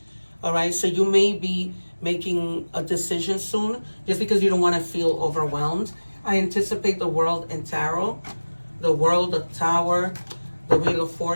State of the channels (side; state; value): both; inverted; correlation -1.00